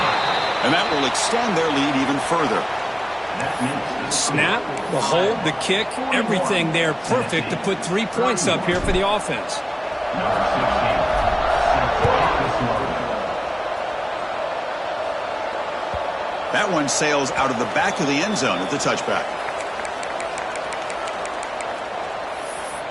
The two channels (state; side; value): identical; both; correlation 1.00